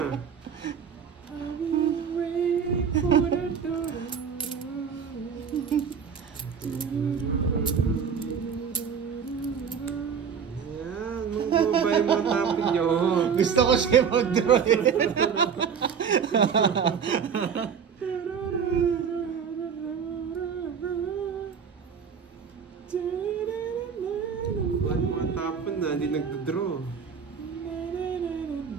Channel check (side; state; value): left; quieter; 6.9 dB